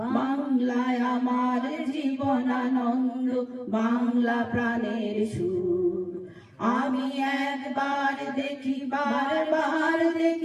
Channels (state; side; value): identical; both; correlation 1.00